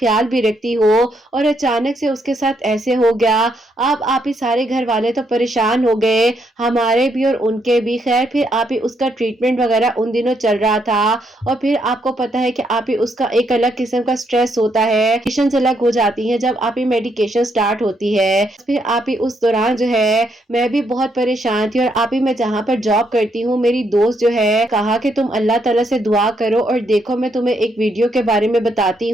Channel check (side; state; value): both; normal; correlation 0.75